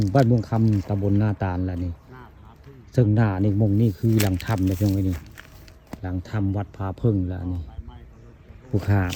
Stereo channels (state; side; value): identical; both; correlation 1.00